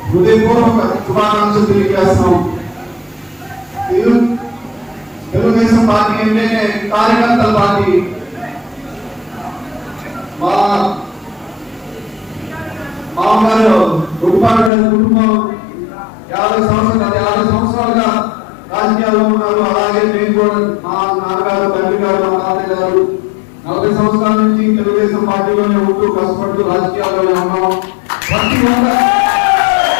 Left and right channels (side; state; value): right; drops out; at 14.7 s